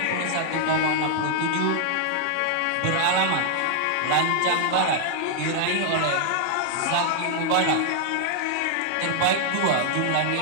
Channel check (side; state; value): both; different; correlation -0.01